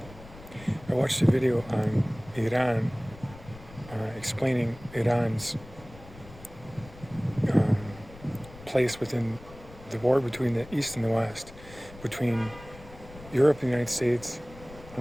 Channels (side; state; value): left; noise; rumble, 18 dB below the sound